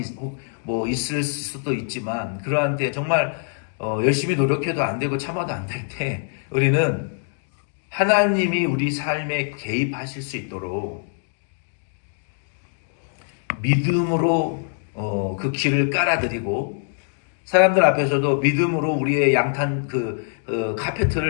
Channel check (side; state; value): right; silent; digital silence